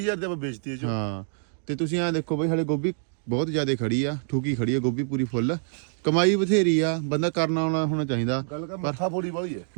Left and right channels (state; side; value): silent; left; digital silence